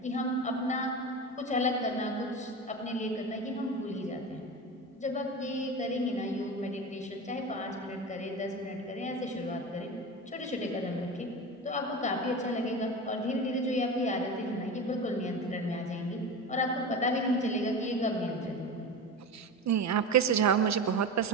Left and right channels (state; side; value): normal; both; correlation 0.26